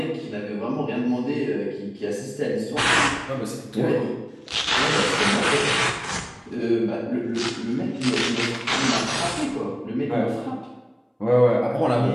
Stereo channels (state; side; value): identical; both; correlation 1.00